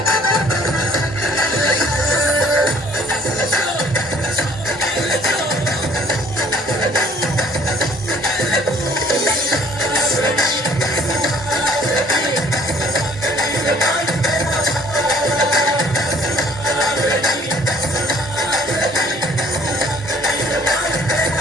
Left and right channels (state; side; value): normal; both; correlation 0.57